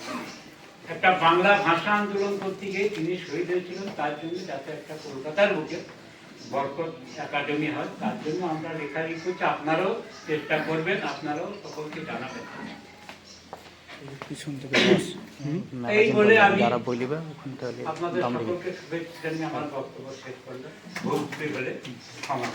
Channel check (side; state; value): both; identical; correlation 1.00